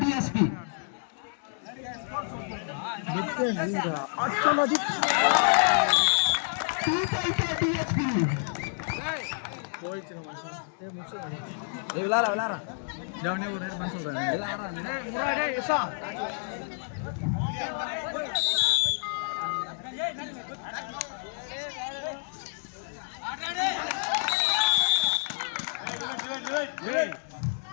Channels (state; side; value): silent; right; digital silence